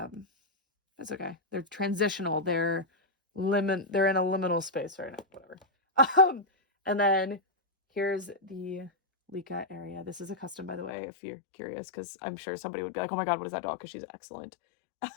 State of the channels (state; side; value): drops out; right; at 10.9 s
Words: okay. They're transitional. They're in a liminal space right now. Whatever. And then here's the Licca area. This is a custom, by the way, if you're curious, because I'm sure somebody would be like, oh my god, what is that doll? Because she's excellent.